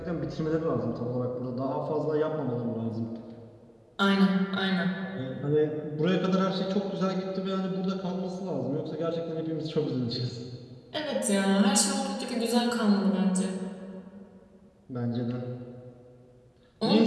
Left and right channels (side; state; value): both; identical; correlation 1.00